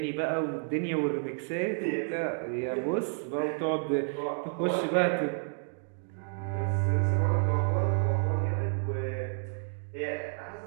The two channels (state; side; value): silent; left; 58 dB below the other